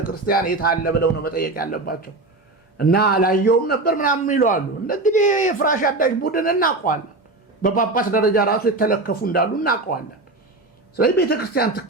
የት አለ ብለው ነው መጠየቅ ያለባቸው። እና አላየውም ነበር ምናምን ይለዋሉ። እንግዲህ የፍራሽ አዳሽ ቡድን እናውቀዋለን። በጳጳስ ደረጃ ራሱ የተለከፉ እንዳሉ እናውቀዋለን። ስለዚህ ቤተክርስቲያን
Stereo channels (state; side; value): quieter; left; 3.1 dB